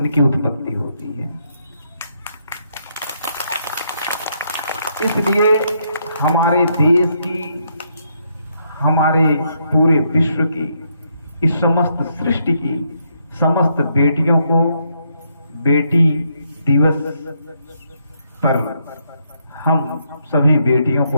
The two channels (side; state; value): both; inverted; correlation -0.75